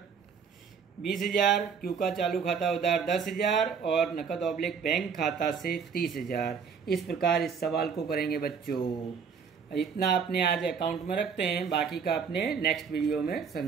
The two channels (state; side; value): quieter; left; 6.3 dB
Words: 20,000, क्यू का चालू खाता उधार 10,000 और नकद ऑब्लिक बैंक खाता से 30,000। इस प्रकार इस सवाल को करेंगे बच्चों। इतना अपने आज अकाउंट में रखते हैं, बाकी का अपने नेक्स्ट वीडियो में